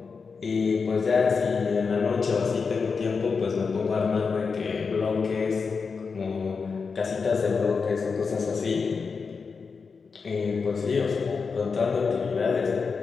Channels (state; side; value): quieter; right; 5.1 dB